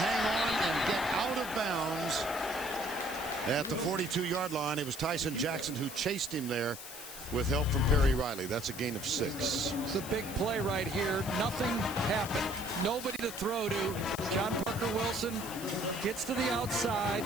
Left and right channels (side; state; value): left; noise; hiss, 11 dB below the sound